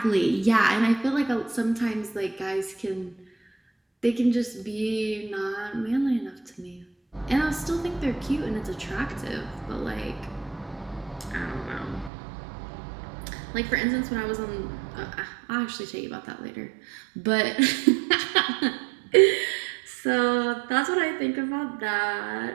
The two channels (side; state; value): left; drops out; at 12.1 s